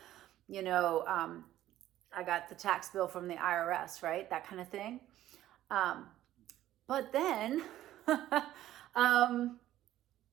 I got the tax bill from the IRS, right? That kind of thing. But then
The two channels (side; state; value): left; quieter; 13.5 dB